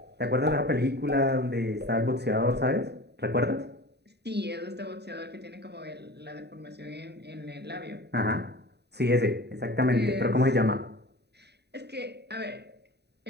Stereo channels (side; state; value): left; late; 0.48 ms